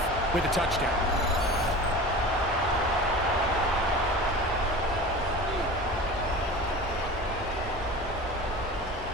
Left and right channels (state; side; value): normal; both; correlation 0.35